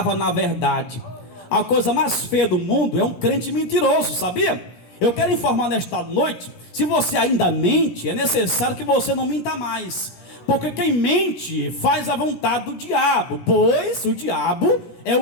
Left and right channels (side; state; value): right; late; 17 ms